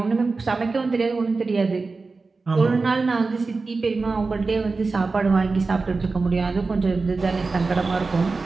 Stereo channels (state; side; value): quieter; left; 4.0 dB